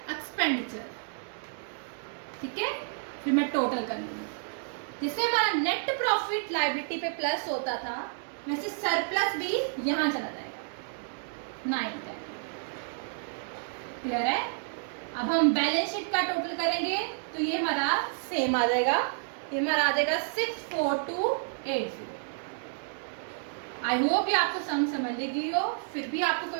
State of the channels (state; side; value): silent; left; digital silence